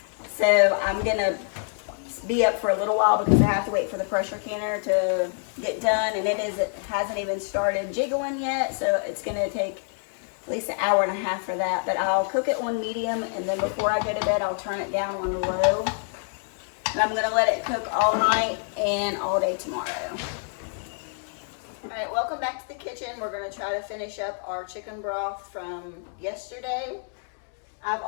So I'm going to be up for a little while because I have to wait for the pressure canner to get done, and it hasn't even started jiggling yet, so it's going to take at least an hour and a half for that. But I'll cook it on medium, and then before I go to bed I'll turn it down on low, and I'm going to let it cook all night and all day tomorrow. Alright, welcome back to the kitchen. We're going to try to finish up our chicken broth from yesterday. I've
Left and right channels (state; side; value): silent; right; 57 dB below the other